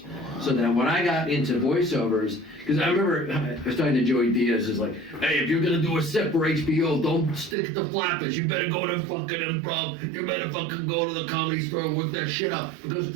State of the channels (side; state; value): left; drops out; at 7.6 s